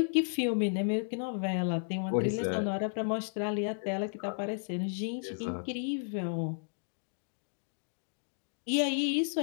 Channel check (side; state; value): right; silent; digital silence